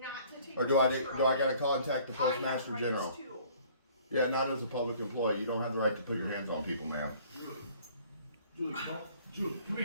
to take Or do I gotta contact the postmaster general? Too. Yeah, not as a public employee. You don't have the right to put your hands on people, ma'am. Julie, come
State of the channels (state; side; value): inverted; both; correlation -0.55